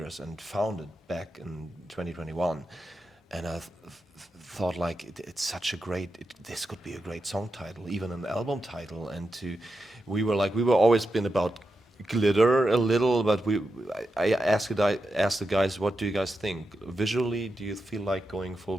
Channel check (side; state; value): both; normal; correlation 0.88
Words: and found it back in 2021. And I thought like it's such a great, this could be a great song title, even an album title. And we were always been about glitter a little, but I asked the guys, what do you guys think? Visually, do you feel like going full